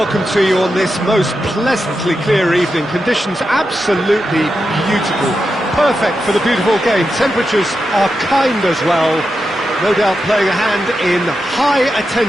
to you on this most pleasantly clear evening. Conditions absolutely beautiful, perfect for the beautiful game. Temperatures are kind as well, no doubt playing a hand in high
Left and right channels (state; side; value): normal; both; correlation 0.88